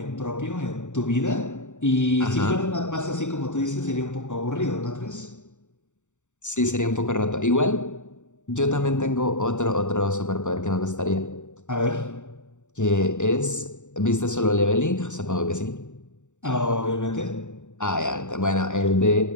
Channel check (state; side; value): late; right; 0.85 ms